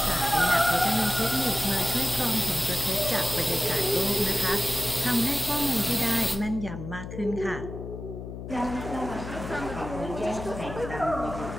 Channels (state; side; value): noise; left; hum, 9 dB below the sound